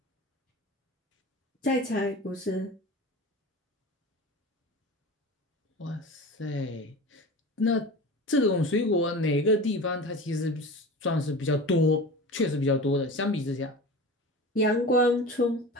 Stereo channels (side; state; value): both; normal; correlation 0.33